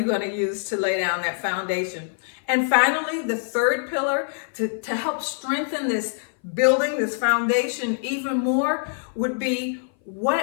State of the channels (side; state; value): right; silent; 58 dB below the other